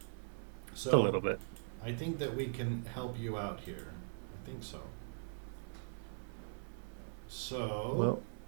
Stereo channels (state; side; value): silent; left; 51 dB below the other